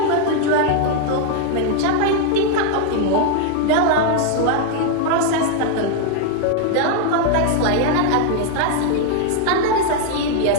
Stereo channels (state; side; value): different; both; correlation 0.00